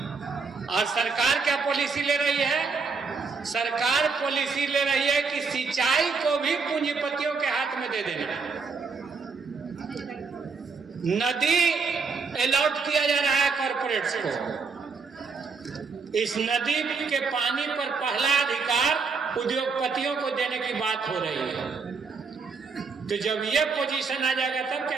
और सरकार क्या पॉलिसी ले रही है? सरकार पॉलिसी ले रही है कि सिंचाई को भी पूंजीपतियों के हाथ में दे देना। नदी अलॉट किया जा रहा है कॉर्पोरेट्स को। इस नदी के पानी पर पहला अधिकार उद्योगपतियों को देने की बात हो रही है। तो जब ये पोजीशन आ जाएगा तब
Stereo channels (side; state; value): left; quieter; 4.9 dB